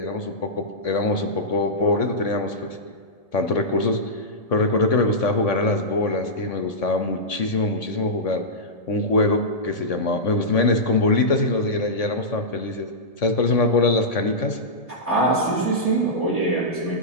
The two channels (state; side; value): late; right; 1.7 ms